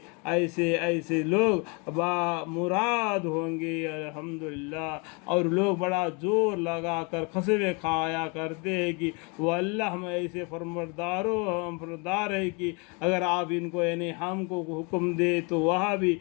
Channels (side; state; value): right; quieter; 32.1 dB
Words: ایسے لوگ مراد ہوں گے الحمدللہ۔ اور لوگ بڑا زور لگا کر قسمیں کھایا کرتے ہیں کہ وہ اللہ میں ایسے فرماندار ہے کہ اگر آپ ان کو یعنی ہم کو حکم دے تو وہاں بھی